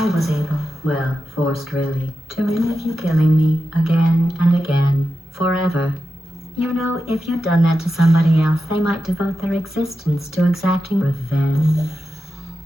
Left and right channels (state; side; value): normal; both; correlation 0.90